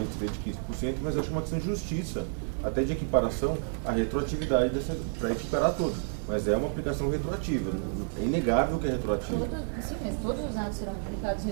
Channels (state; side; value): silent; left; digital silence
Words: seria de 15%, mas eu acho uma questão de justiça, até de equiparação à retroatividade para equiparar todos. Mas é uma aplicação retroativa. É inegável que é retroativa. Sim, mas todos os atos serão aplicados